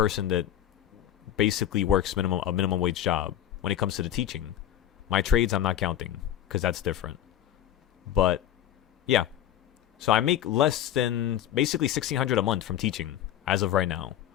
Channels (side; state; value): right; quieter; 11.1 dB